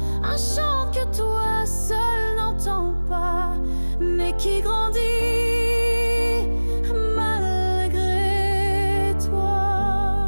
un chant que toi seul n'entends pas, mais qui grandit malgré toi.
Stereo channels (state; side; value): inverted; both; correlation -1.00